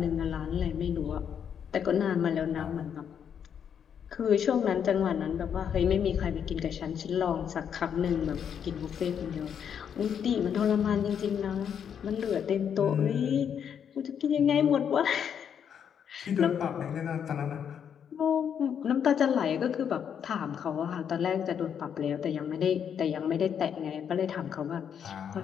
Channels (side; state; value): right; quieter; 8.1 dB